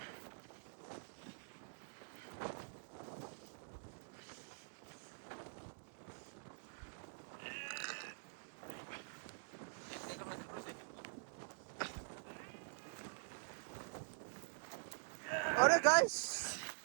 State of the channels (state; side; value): silent; left; digital silence